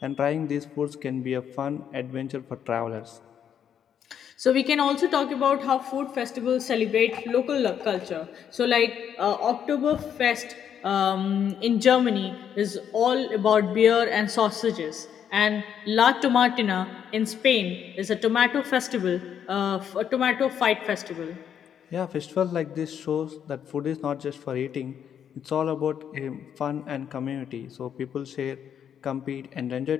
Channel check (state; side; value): quieter; right; 8.7 dB